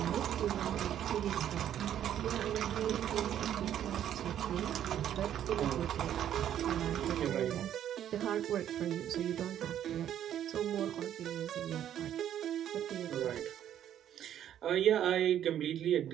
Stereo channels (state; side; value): quieter; left; 10.6 dB